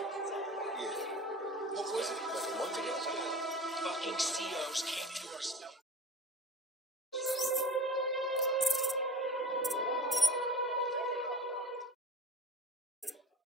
Yeah. What was it? Like a month ago? Fucking COs came into our cell.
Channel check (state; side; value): normal; both; correlation 0.37